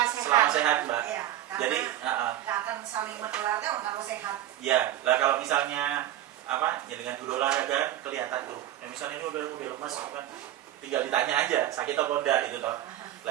Selama sehat Mbak. Ya, jadi nggak akan saling menularnya kalau sehat. Ya, lah kalau misalnya ya dengan guru olahraga kelihatan tuh. Ya, misalnya ini udah lemas kan, tinggal ditanya aja sakit atau enggak itu toh.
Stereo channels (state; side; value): quieter; left; 13.0 dB